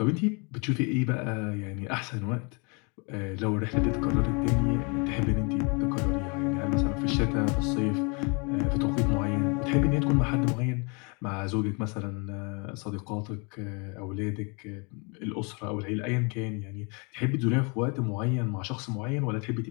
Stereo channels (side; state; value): right; quieter; 32.6 dB